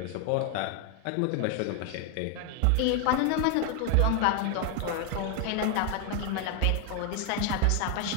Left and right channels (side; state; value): both; different; correlation 0.00